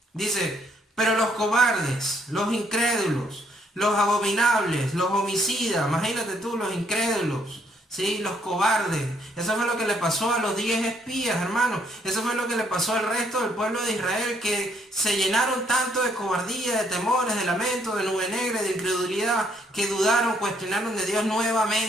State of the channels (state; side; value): normal; both; correlation 0.69